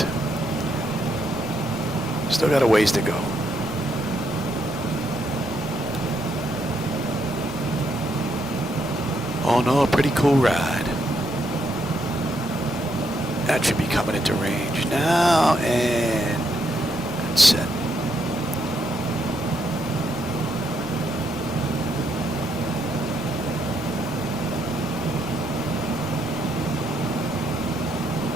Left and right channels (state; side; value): normal; both; correlation 0.77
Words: Still got a ways to go. Oh no, a pretty cool ride. That should be coming into range now, and that's set.